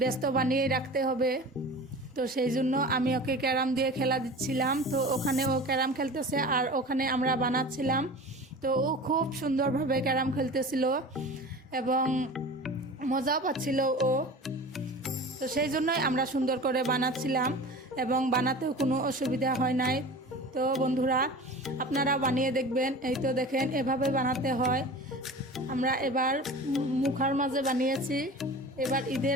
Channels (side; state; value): both; normal; correlation 0.36